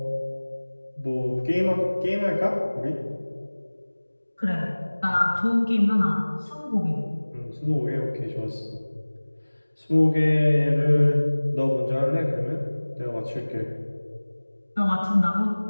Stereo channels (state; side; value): inverted; both; correlation -1.00